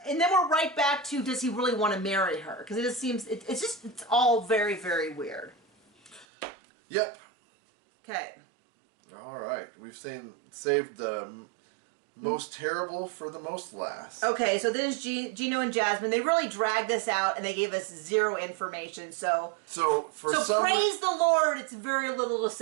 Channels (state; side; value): drops out; left; at 6.2 s